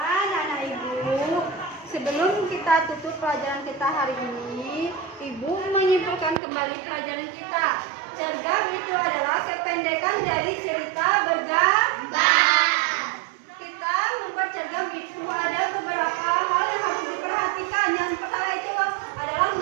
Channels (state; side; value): drops out; left; at 6.4 s